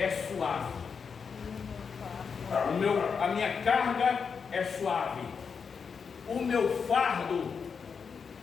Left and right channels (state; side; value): quieter; right; 6.0 dB